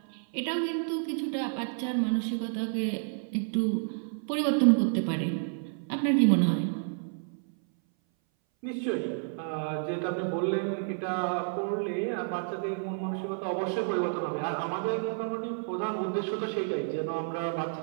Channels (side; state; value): left; silent; 58 dB below the other